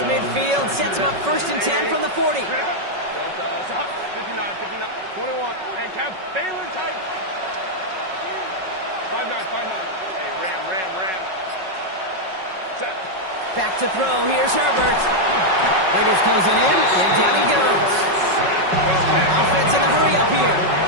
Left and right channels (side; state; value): left; late; 5.4 ms